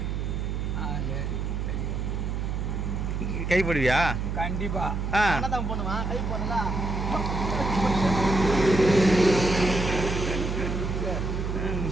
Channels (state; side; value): noise; right; hum, 2 dB below the sound